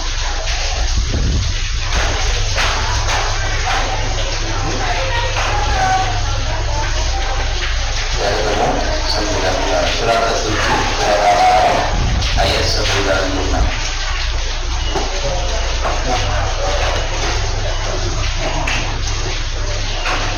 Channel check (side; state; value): both; identical; correlation 1.00